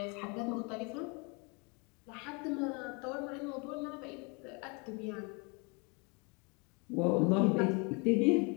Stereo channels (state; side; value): quieter; right; 31.4 dB